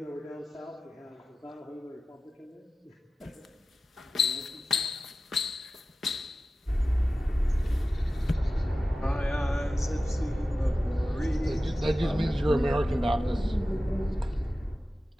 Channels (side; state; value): both; normal; correlation 0.95